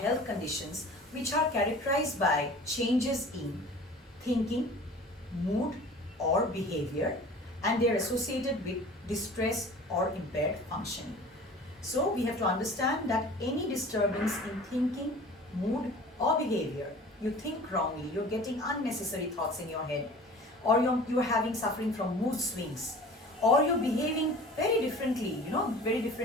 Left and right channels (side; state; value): both; normal; correlation 0.43